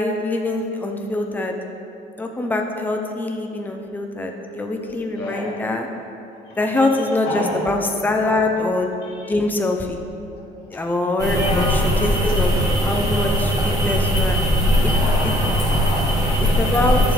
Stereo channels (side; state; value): both; normal; correlation 0.63